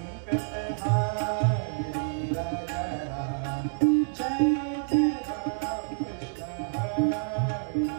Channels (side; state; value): left; silent; 59 dB below the other